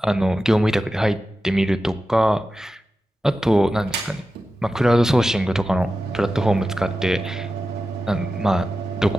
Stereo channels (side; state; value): both; normal; correlation 0.92